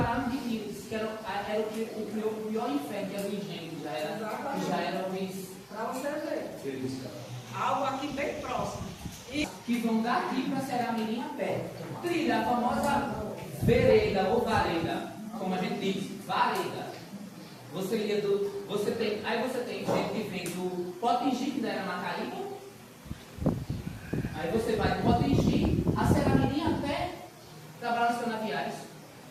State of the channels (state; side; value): identical; both; correlation 1.00